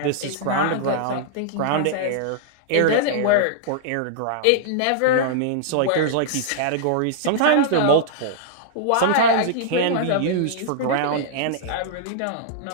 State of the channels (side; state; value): both; different; correlation -0.02